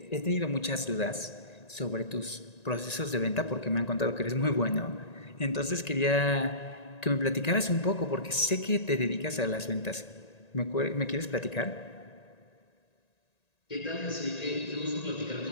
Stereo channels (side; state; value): right; late; 1.9 ms